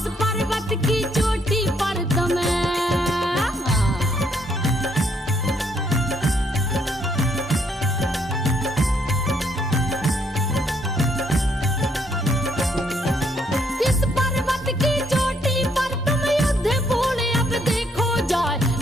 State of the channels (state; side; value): normal; both; correlation 0.70